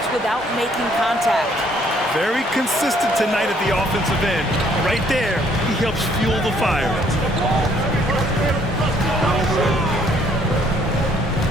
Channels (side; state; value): both; normal; correlation 0.64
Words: without making contact. Very consistent tonight at the offensive end. Right there, he helps fuel the fire.